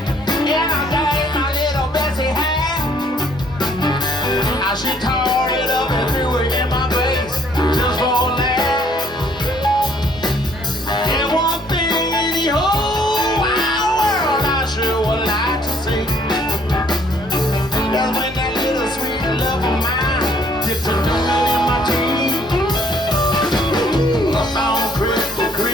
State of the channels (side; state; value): both; normal; correlation 0.63